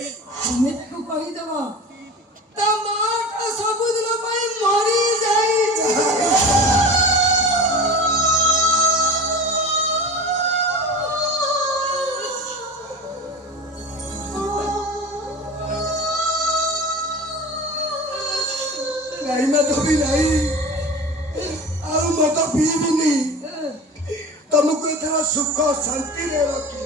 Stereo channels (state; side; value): normal; both; correlation 0.33